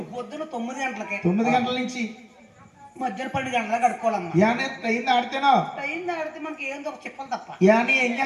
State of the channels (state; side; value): identical; both; correlation 1.00